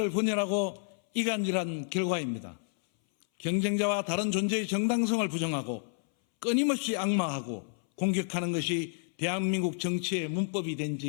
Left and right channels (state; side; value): silent; right; 58 dB below the other